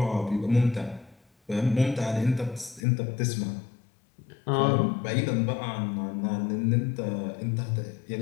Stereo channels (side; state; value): right; drops out; at 2.8 s